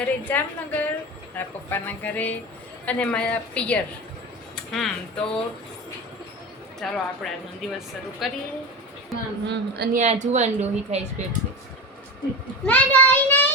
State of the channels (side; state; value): both; normal; correlation 0.25